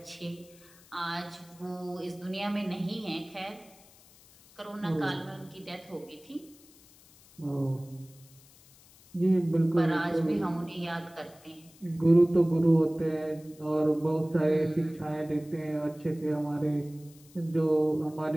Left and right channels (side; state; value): left; noise; hiss, 25 dB below the sound